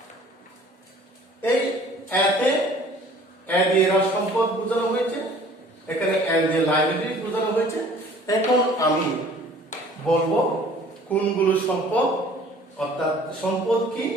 এই এতে এ দিয়ে সম্পদ বোঝানো হয়েছে, এখানে এ দিয়ে লাইব্রেরি বোঝানো হয়েছে। এখন আমি বলবো কোনগুলো সম্পদ, অর্থাৎ সম্পদ কি,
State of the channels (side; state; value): both; normal; correlation 0.51